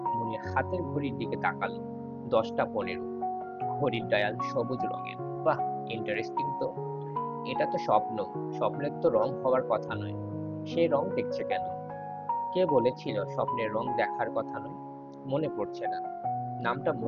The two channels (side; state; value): both; identical; correlation 1.00